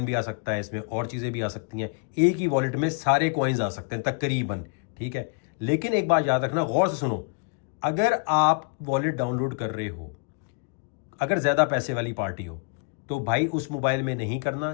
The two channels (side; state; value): right; quieter; 35.8 dB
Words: भी आ सकता है, इसमें और चीजें भी आ सकती हैं, एक ही वॉलेट में सारे कॉइन्स आ सकते हैं तकरीबन, ठीक है। लेकिन एक बात याद रखना, गौर से सुनो, अगर आप वॉलेट डाउनलोड कर रहे हो, अगर ज्यादा पैसे वाली पार्टी हो, तो भाई उस मोबाइल में नहीं करना